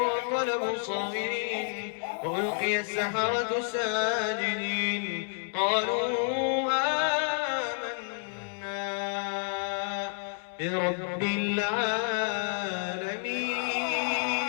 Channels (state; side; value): silent; right; 58 dB below the other